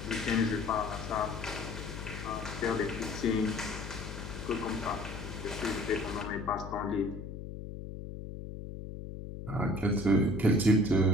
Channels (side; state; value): left; noise; hum, 9 dB below the sound